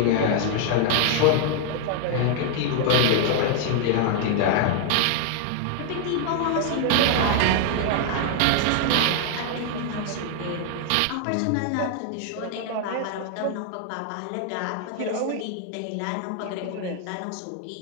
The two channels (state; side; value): different; both; correlation 0.00